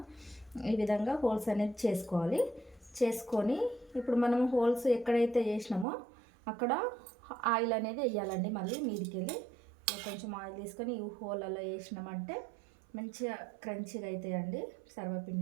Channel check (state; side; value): drops out; left; at 5.9 s